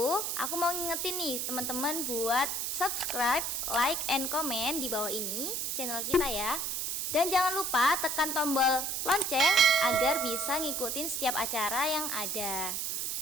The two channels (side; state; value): right; noise; hiss, 1 dB below the sound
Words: aku mau ngingetin nih teman-teman buat subscribe, like, and comment di bawah ini channel kita ya. Dan jangan lupa tekan tombol lonceng agar bisa ngikutin setiap acara yang ada.